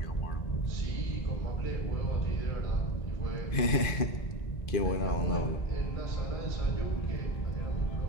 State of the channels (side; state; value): right; late; 2.4 ms